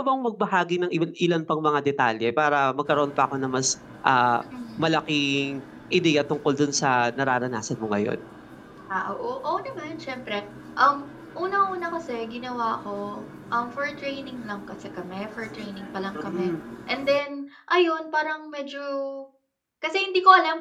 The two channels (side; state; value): both; identical; correlation 1.00